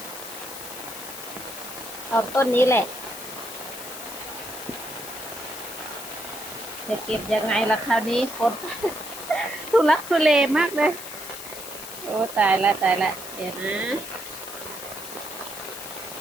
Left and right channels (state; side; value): noise; left; hiss, 11 dB below the sound